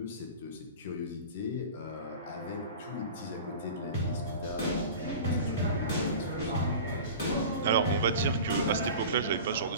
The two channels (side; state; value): both; inverted; correlation -0.36